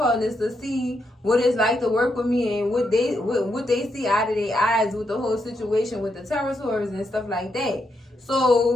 to see what it's like to work with me and what they see out of their eyes with the whole situation with the territories and stuff like that.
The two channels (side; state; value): both; normal; correlation 0.81